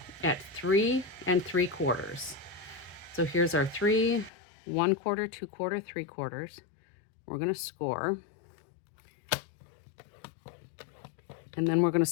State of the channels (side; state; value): right; drops out; at 4.3 s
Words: at 3 3/4. So here's our 3, 1/4, 2/4, 3/4. We're going to score. And then we're going to